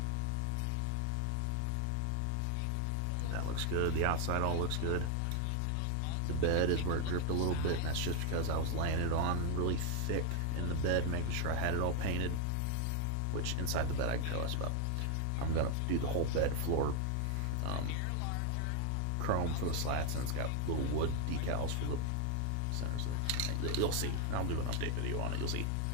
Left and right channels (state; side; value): different; both; correlation 0.00